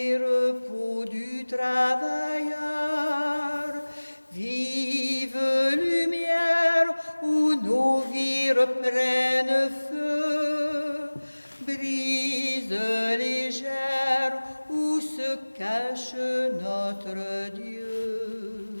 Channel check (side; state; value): both; inverted; correlation -1.00